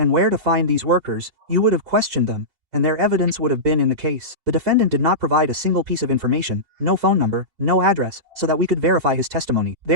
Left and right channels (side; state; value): left; late; 4.8 ms